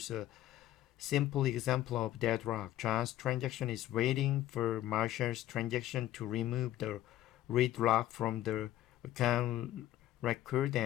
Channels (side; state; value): right; quieter; 13.7 dB